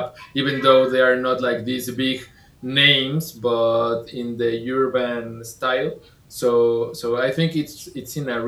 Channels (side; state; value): both; identical; correlation 1.00